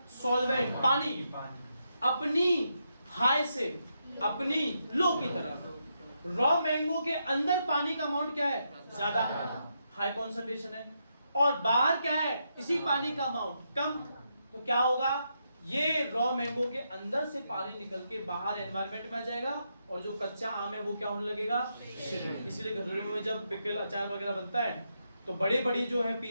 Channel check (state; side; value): inverted; both; correlation -0.81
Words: सॉल्वेंट, पानी अपनी हाई से अपनी लो की तरफ। रॉ मैंगो के अंदर पानी का अमाउंट क्या है? ज्यादा, हाई कॉन्सेंट्रेशन है, और बाहर क्या है? इसी पानी का अमाउंट कम। तो क्या होगा? ये रॉ मैंगो के अंदर से पानी निकल के बाहर एनवायरनमेंट में आ जाएगा, और जो कच्चा आम है वो क्या होने लगेगा? इसीलिए घरों में जब पिकल, अचार वगैरह बनता है तो बड़े बड़ी जो है